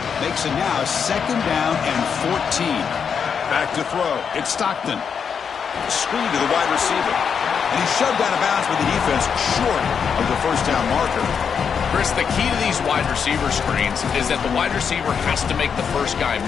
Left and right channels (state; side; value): quieter; right; 6.8 dB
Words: Makes it now 2nd down and 14. Back to throw. It's Stockton. Screen to the wide receiver. And he's shoved out of bounds by the defense short of the first down marker. Chris, the key to these wide receiver screens is that the wide receiver has to make the first guy